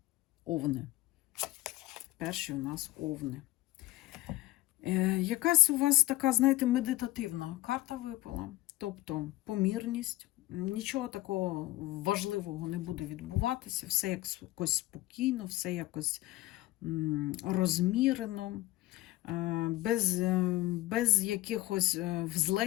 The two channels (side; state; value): right; quieter; 17.9 dB